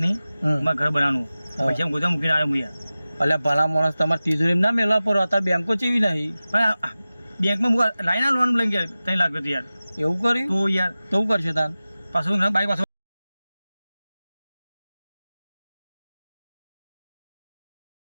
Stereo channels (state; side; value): inverted; both; correlation -0.96